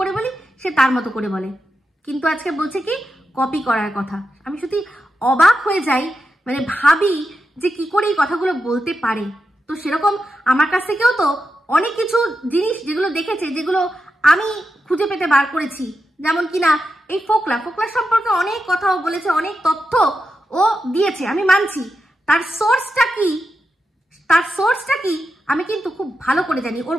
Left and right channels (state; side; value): normal; both; correlation 0.88